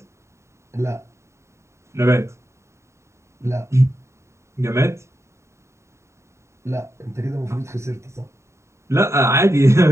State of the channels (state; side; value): late; left; 0.14 ms